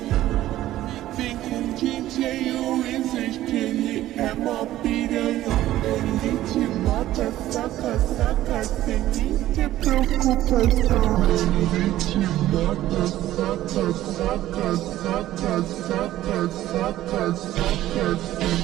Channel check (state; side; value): quieter; left; 14.3 dB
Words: Vem com DJ Wizard que ele é mó piranha. Ele te mata, saca, saca, sem nem ter preocupação. Ele te mata, saca, saca, saca, saca, saca, saca, sem